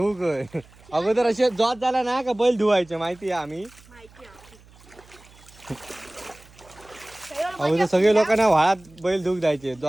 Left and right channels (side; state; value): right; noise; hum, 25 dB below the sound